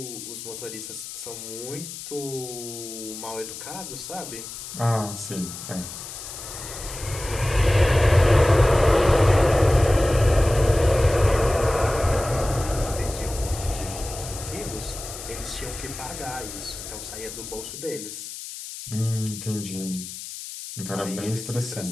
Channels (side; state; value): left; noise; hiss, 10 dB below the sound